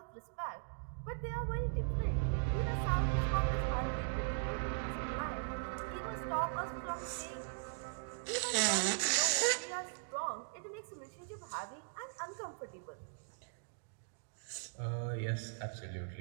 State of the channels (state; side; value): silent; left; digital silence